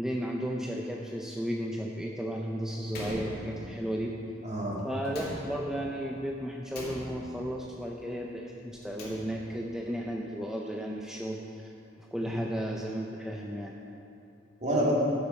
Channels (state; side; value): normal; both; correlation 0.66